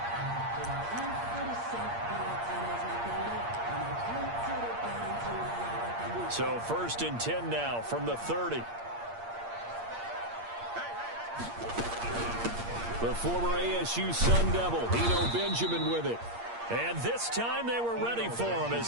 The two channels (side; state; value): left; late; 8.6 ms